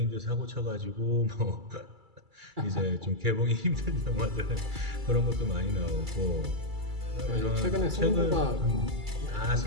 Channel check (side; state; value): left; late; 2.3 ms